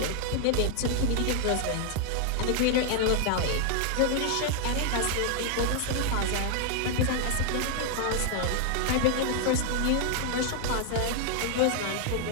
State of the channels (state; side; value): different; both; correlation 0.00